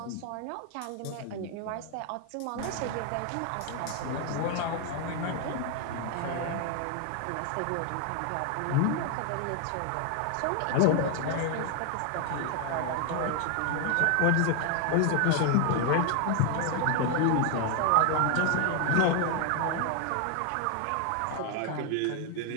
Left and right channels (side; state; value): both; different; correlation 0.01